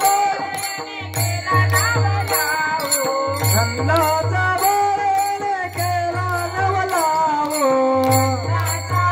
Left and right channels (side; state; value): both; identical; correlation 1.00